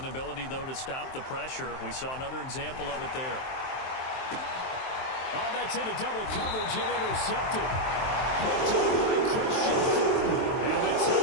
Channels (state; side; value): late; right; 23 ms